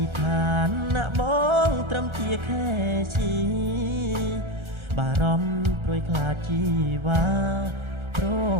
ឋានៈបងត្រឹមជាខែជីបារម្ភព្រួយខ្លាចជីវ៉ាព្រោ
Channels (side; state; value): left; late; 1.4 ms